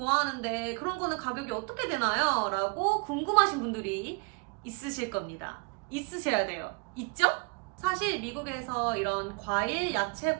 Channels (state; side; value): quieter; left; 33.3 dB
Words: 그런 거는 가격이 어떻게 되나요? 라고 궁금하신 분들이 있으실 겁니다. 있으셔야 돼요. 있죠? 사실 미국에서 이런 과일, 야채,